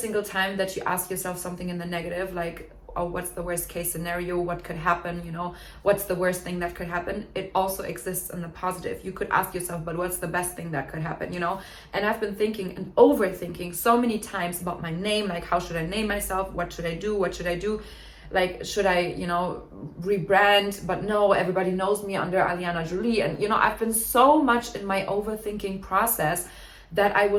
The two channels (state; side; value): identical; both; correlation 1.00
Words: time that you ask yourself something in the negative, like, oh, what's the worst case scenario, what could happen, you know, what's the worst thing that could happen, it also exists in the positive. You could ask yourself, but what's the best thing that could happen, you know? And I've been thinking and overthinking so many times about my name, like, how should I name myself, what should I do, like, should I, you know, rebrand? But no, everybody knows me under Alina Jolie. And, you know, I've been so much in my overthinking process that I